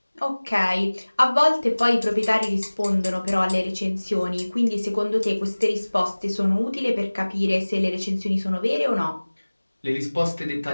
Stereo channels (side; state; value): both; inverted; correlation -1.00